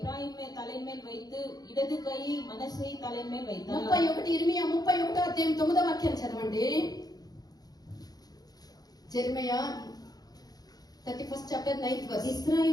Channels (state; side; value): late; right; 0.19 ms